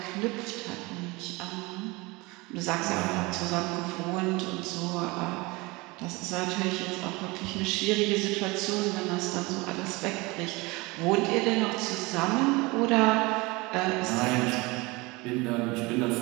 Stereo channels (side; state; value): left; quieter; 24.1 dB